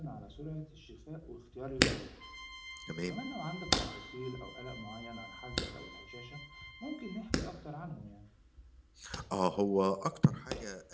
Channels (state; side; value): identical; both; correlation 1.00